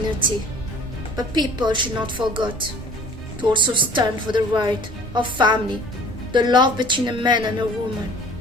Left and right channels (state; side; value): normal; both; correlation 0.49